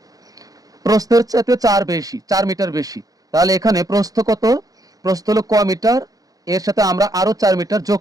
প্রস্থের চাইতে 4 বেশি, 4 মিটার বেশি। তাহলে এখানে প্রস্থ কত? প্রস্থ হলো ক মিটার, এর সাথে আমরা আরো 4 মিটার যোগ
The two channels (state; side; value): late; left; 0.17 ms